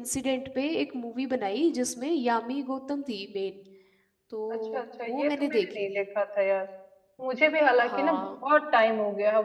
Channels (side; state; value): both; identical; correlation 1.00